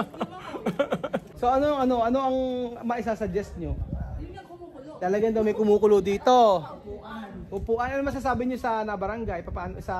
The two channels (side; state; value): both; identical; correlation 1.00